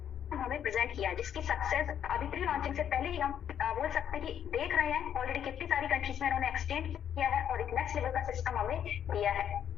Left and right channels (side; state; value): right; quieter; 9.3 dB